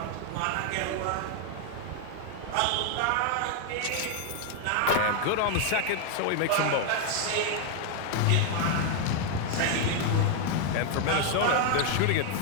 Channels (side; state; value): both; different; correlation 0.00